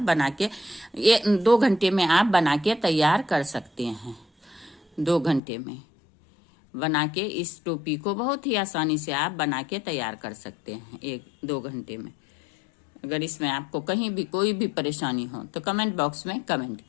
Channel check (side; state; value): right; drops out; at 5.4 s